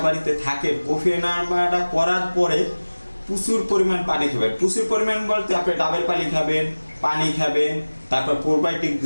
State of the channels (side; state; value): both; inverted; correlation -1.00